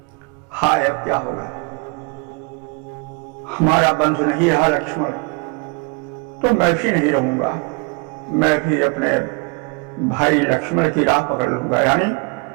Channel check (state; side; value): quieter; left; 31.5 dB